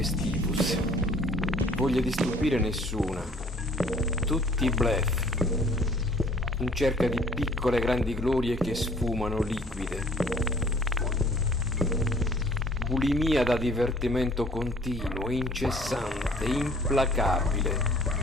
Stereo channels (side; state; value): both; normal; correlation 0.55